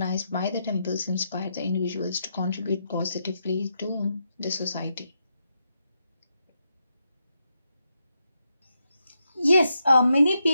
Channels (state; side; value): inverted; both; correlation -0.83